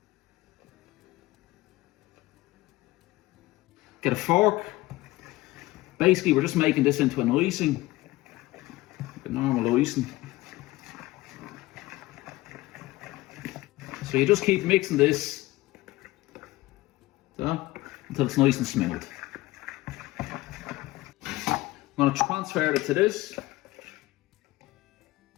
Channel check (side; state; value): right; quieter; 18.4 dB